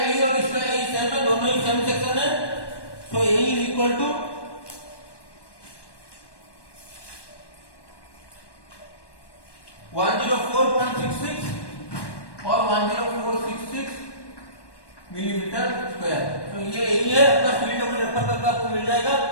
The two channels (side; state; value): right; late; 1.1 ms